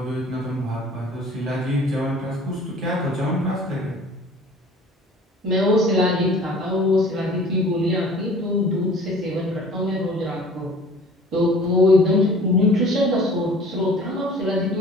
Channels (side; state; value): both; normal; correlation 0.48